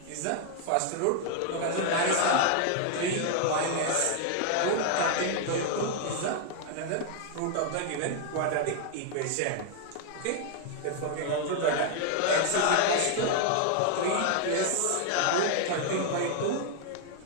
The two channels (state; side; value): different; both; correlation 0.00